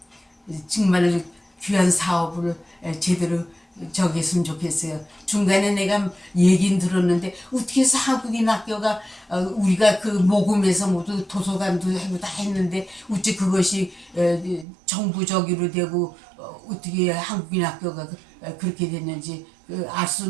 정말 귀한 사업을 제대로 저기 했으면 좋겠어요. 중간에 내가 얘기는 들었는데 어떻게 해서 한국인 학교가 우리가 그 모금에서 모두 도서관도 하고 다 했는데 어찌 그것이 정부적으로 되고 어떻게 한국인 학교가 그렇게 됐는지 알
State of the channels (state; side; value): drops out; left; at 14.7 s